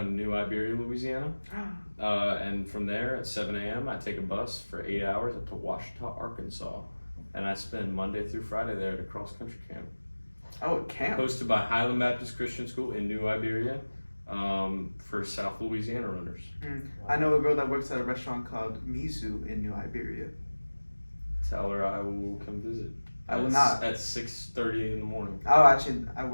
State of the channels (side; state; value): both; inverted; correlation -1.00